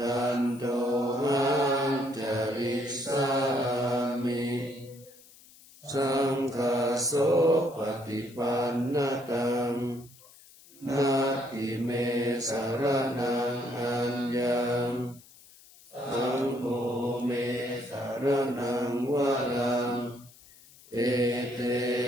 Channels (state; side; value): noise; left; hiss, 24 dB below the sound